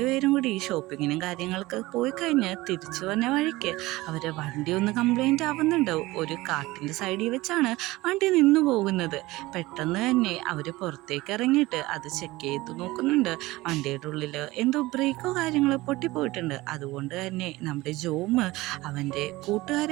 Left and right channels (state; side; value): quieter; left; 19.6 dB